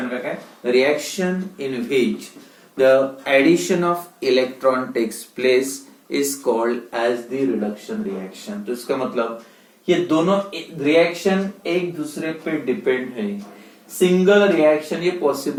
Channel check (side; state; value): both; identical; correlation 1.00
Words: का क्या है? Reaction in which the addition of electron takes place is called as the reduction reaction. तो इसका मतलब ये दोनों रिएक्शन एक दूसरे पे डिपेंड है। सिंगल रिएक्शन ये